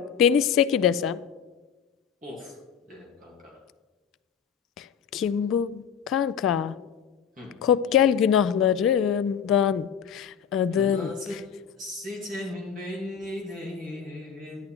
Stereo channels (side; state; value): right; quieter; 7.7 dB